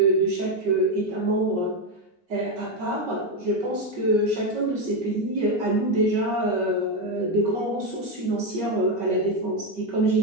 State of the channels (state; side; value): late; left; 5.3 ms